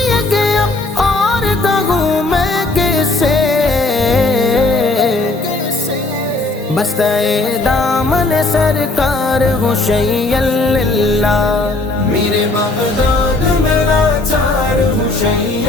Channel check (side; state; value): right; quieter; 3.1 dB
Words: کہ اب اور کہوں میں کیسے، بستہ دامن سرکار ہوں شیئا للہ. میرے بغداد میں لاچار ہوں